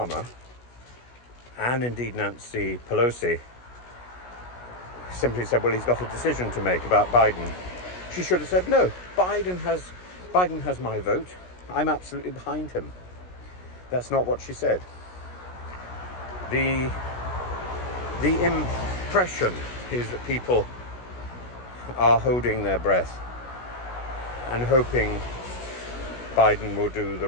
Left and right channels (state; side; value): late; right; 16 ms